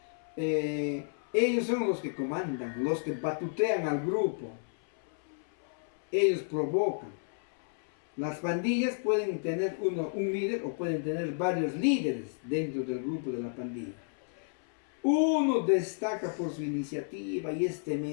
Ellos son los que comandan, los que batutean al grupo. Ellos provocan. Las pandillas pueden tener un líder o pueden tener varios líderes dentro del grupo de la pandilla. Uno destaca por su iniciativa y es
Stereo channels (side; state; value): right; silent; 57 dB below the other